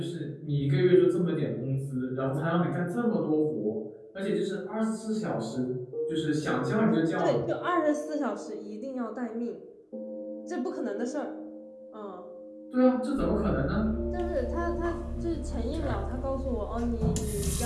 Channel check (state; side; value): identical; both; correlation 1.00